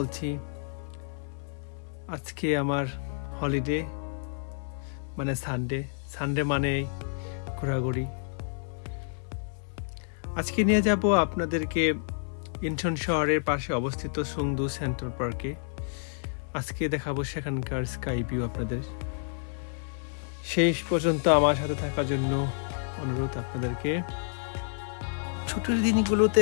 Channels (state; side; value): silent; right; 56 dB below the other